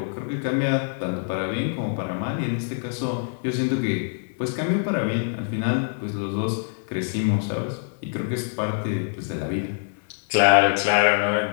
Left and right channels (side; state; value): right; silent; 60 dB below the other